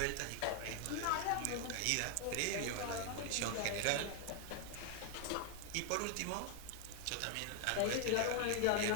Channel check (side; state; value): both; different; correlation 0.00